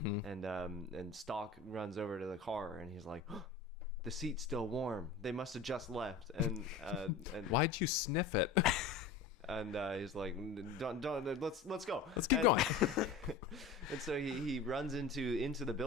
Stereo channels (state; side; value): quieter; right; 4.6 dB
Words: Stock runs over to the car and he's like, oh, the seat's still warm. They must have just left. And Why'd you sniff it? and he's like, don't let's go. Let's keep going. And so he runs into the